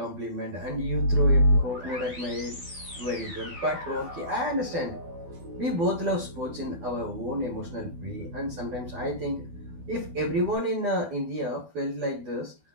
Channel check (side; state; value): left; late; 12 ms